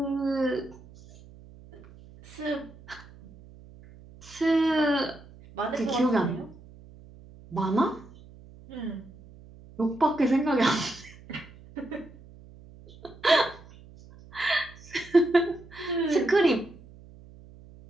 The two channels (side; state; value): right; noise; hum, 21 dB below the sound